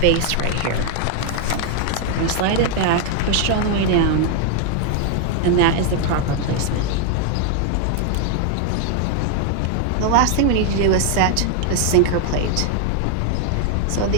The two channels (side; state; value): both; different; correlation 0.00